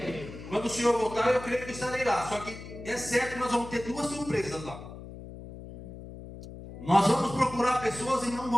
Quando o Senhor voltar, eu creio que estarei lá. Só que é certo que nós vamos ter duas surpresas lá. Nós vamos procurar pessoas e não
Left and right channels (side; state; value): left; noise; hum, 13 dB below the sound